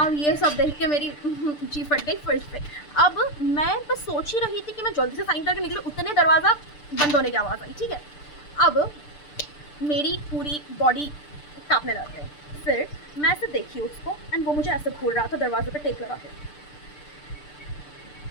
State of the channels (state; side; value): late; right; 6.8 ms